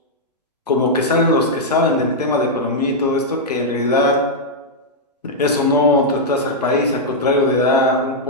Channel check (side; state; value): both; normal; correlation -0.04